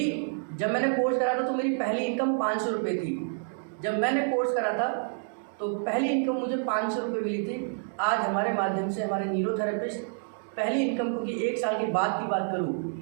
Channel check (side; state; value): left; silent; digital silence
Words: जब मैंने कोर्स करा था तो मेरी पहली इनकम 500 रुपये थी। जब मैंने कोर्स करा था तो पहली इनकम मुझे 500 रुपये मिली थी। आज हमारे माध्यम से हमारे न्यूरोथेरेपिस्ट पहली इनकम, क्योंकि 1 साल के बाद की बात